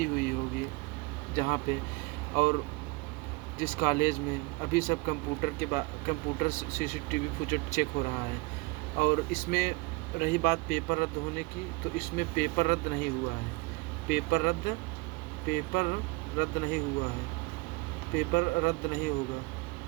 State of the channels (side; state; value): left; quieter; 25.3 dB